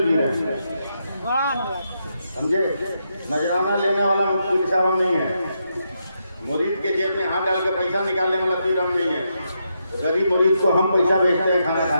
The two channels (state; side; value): inverted; both; correlation -0.82